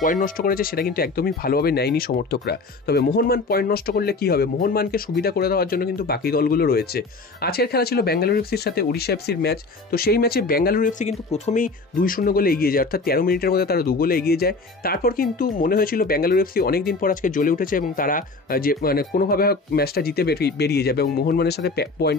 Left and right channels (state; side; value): quieter; right; 3.7 dB